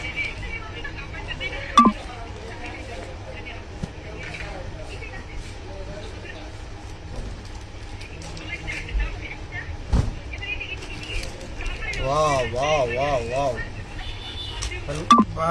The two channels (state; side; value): identical; both; correlation 1.00